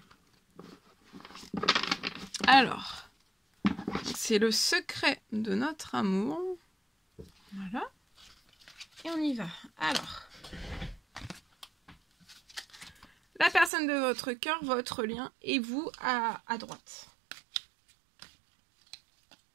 Alors, c'est le secret de notre amour. Voilà. Et on y va. Alors, la personne de votre cœur, votre lien, et vous à droite.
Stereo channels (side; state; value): left; drops out; at 13.7 s